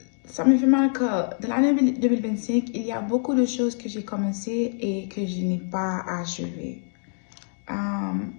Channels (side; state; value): right; silent; 62 dB below the other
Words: ça me fait mal que dans l'année 2025, il y a beaucoup de choses que j'ai commencées et que je n'ai pas achevées.